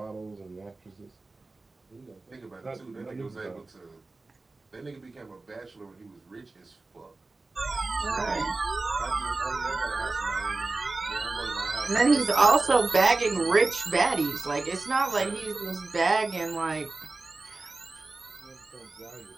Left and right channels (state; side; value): quieter; left; 3.4 dB